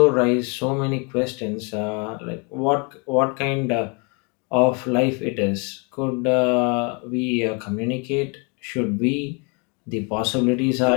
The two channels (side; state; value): right; quieter; 33.1 dB